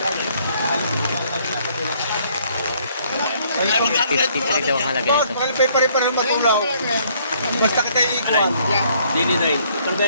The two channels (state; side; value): inverted; both; correlation -0.64